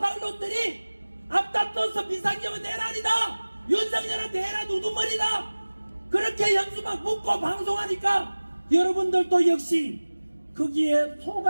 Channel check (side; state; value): both; inverted; correlation -1.00